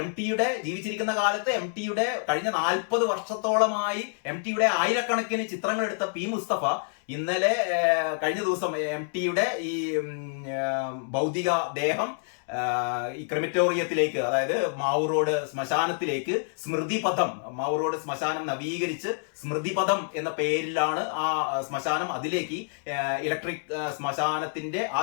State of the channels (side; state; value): right; silent; digital silence